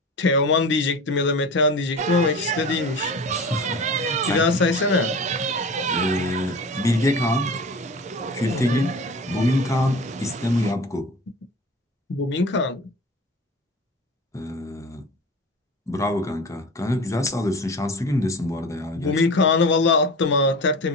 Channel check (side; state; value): both; normal; correlation 0.35